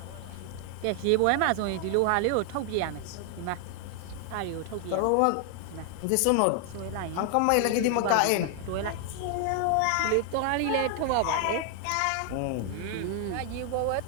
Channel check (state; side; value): different; both; correlation 0.00